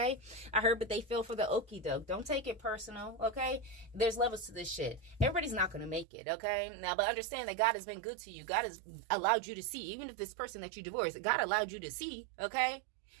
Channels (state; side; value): drops out; left; at 6.1 s